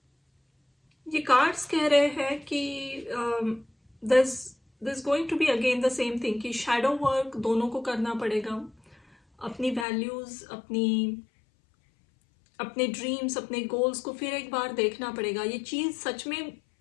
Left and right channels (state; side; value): drops out; right; at 9.9 s